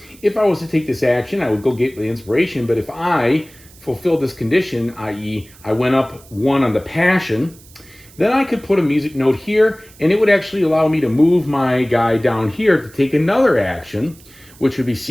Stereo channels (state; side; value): noise; right; hiss, 24 dB below the sound